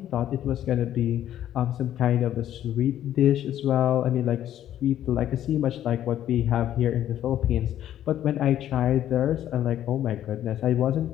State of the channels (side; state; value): right; quieter; 11.6 dB